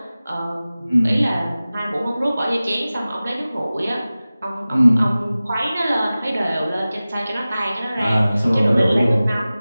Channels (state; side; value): inverted; both; correlation -0.97